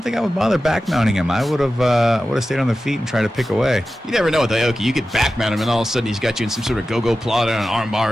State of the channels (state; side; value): normal; both; correlation 0.94